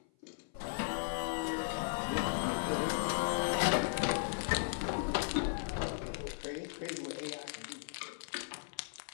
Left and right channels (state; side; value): silent; right; 53 dB below the other